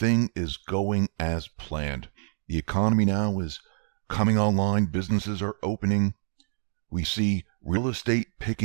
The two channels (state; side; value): silent; left; digital silence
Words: is going as planned. The economy now is coming online. Businesses are opening. We see real estate